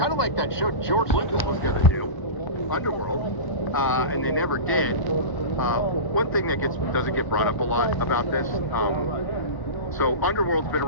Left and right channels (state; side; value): late; right; 1.0 ms